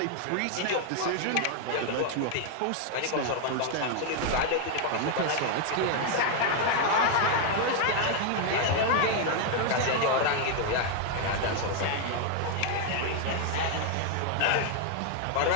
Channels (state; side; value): different; both; correlation 0.00